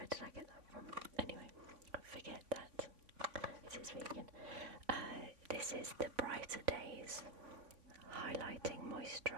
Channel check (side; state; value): left; late; 3.5 ms